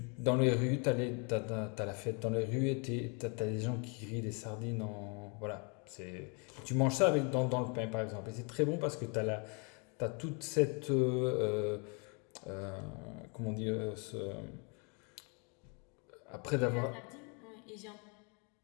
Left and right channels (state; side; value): quieter; right; 34.6 dB